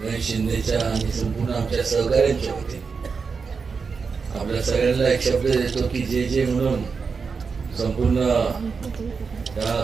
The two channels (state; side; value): quieter; left; 5.2 dB